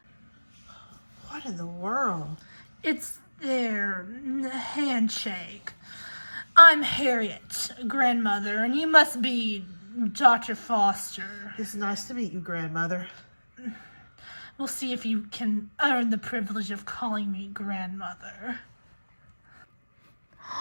What in the world? It's their handshake. I'm Harriet, grandmother, and you must be Dr. Foster. It's nice to meet you, grandmother. We'll see if you can earn the privilege of calling me grandmother.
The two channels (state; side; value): inverted; both; correlation -1.00